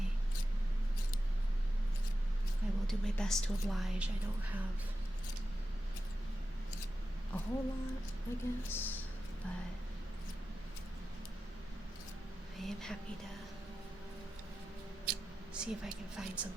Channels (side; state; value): both; normal; correlation 0.92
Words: I will do my best to oblige. I don't have a whole lot, I guess, but I am happy to see if I can find